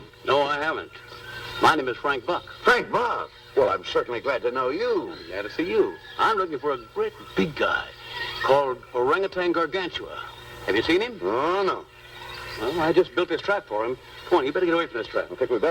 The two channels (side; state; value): both; identical; correlation 1.00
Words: No, I haven't. My name is Frank Buck. Frank Buck? Well, I'm certainly glad to know you. Glad to see you. I'm looking for a great big guy called Orangutan Gargantua. Have you seen him? Oh, no. Well, I just built this trap for him. Come on, you better get away from this trap. I think we